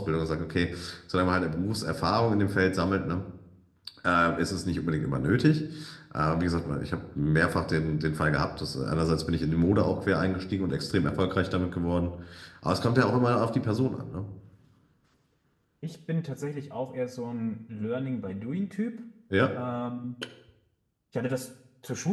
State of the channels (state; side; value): identical; both; correlation 1.00